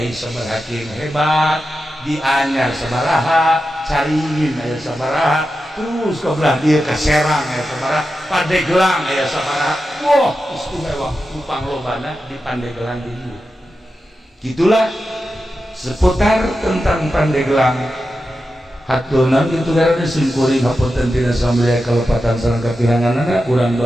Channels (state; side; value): normal; both; correlation 0.90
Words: sabaraha hebat di Anyar sabaraha Caringin aya sabaraha terus ke belah dia ke Serang aya sabaraha Pandeglang aya sabaraha wah istimewa upang lobana di Pandeglang di dieu. Gitulah seputar tentang Pandeglang. Haturna kitu garana simkuring hapunten tina samaya kalepatan sareng kapiranganana urang